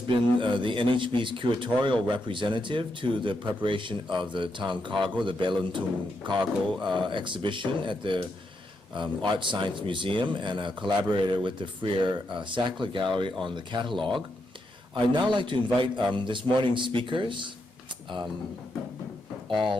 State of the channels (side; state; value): both; normal; correlation 0.82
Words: been the NHB's curatorial representative to the preparation of the Tang Cargo, the Beluntung Cargo exhibition at the Art Science Museum, and a collaborator with the Freer Sackler Gallery on the catalog. I'd now like to invite this morning's speakers,